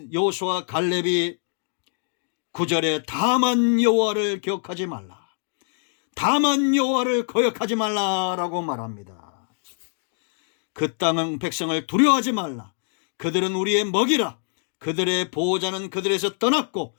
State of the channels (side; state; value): right; silent; digital silence